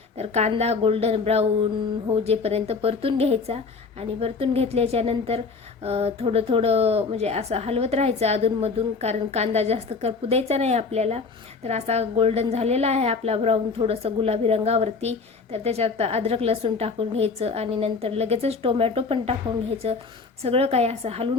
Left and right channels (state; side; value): quieter; right; 4.7 dB